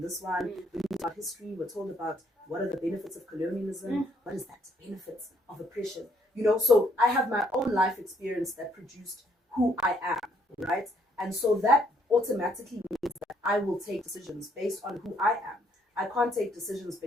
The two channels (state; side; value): normal; both; correlation 0.68